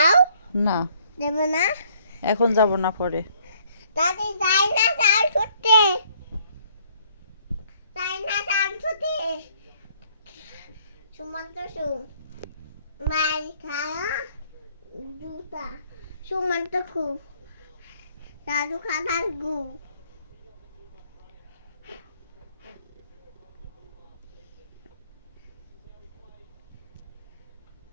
না, দেবে না? এখন যাব না, পরে। দাদি যাই না তাল ছুটতে, যাই না তাল ছুটতে। সুমন্ত সু মাই খায়া জুতা সুমন্ত খু দাদু খানার গু।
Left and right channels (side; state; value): both; inverted; correlation -0.64